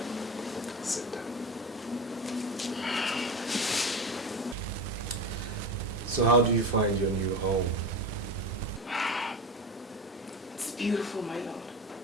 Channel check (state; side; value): normal; both; correlation 0.25